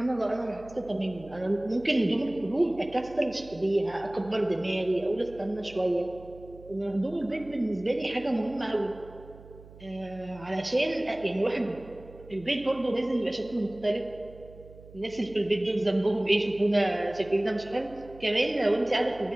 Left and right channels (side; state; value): right; noise; hum, 20 dB below the sound